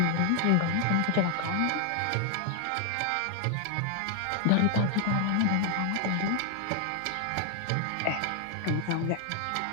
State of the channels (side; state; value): both; different; correlation 0.00